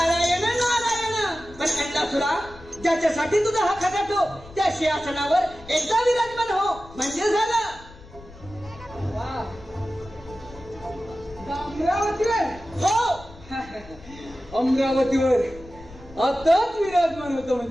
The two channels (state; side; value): noise; left; rumble, 19 dB below the sound